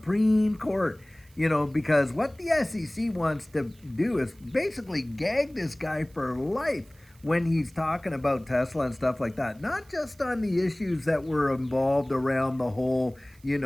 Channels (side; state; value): right; noise; hiss, 29 dB below the sound